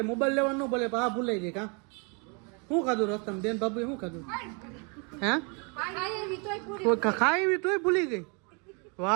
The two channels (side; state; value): left; quieter; 34.2 dB